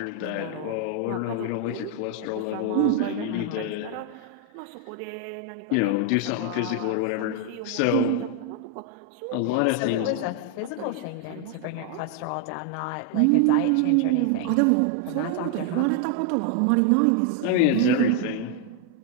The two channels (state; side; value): different; both; correlation 0.01